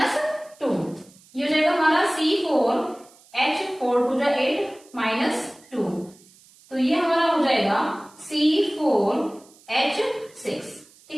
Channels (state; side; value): noise; right; hiss, 27 dB below the sound